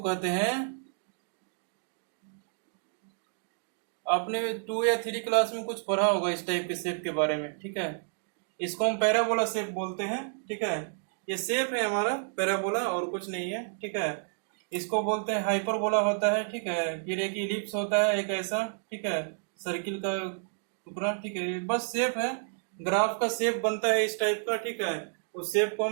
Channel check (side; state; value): left; silent; digital silence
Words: हैं, आपने 2 या 3 क्लास में कुछ पढ़ा होगा इस टाइप के शेप के बारे में। ठीक है, इसको हम पैराबोला शेप बोलते हैं, ठीक है। ये शेप है हमारा पैराबोला और कुछ नहीं है, ठीक है। इसको बोलते हैं हाइपरबोला होता है, ठीक है। फिर एक इलिप्स होता है, एक ऐसा, ठीक है, सर्किल का टुकड़ा, ठीक है। बस शेप है, ग्राफ का शेप बनता है इस टाइप का, ठीक है। उस शेप को